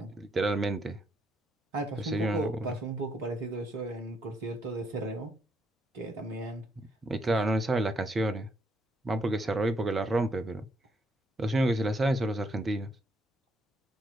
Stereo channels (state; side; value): normal; both; correlation 0.74